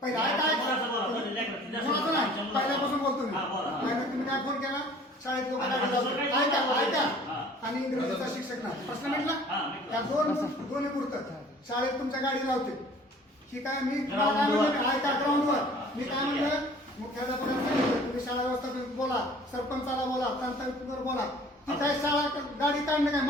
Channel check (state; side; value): normal; both; correlation 0.50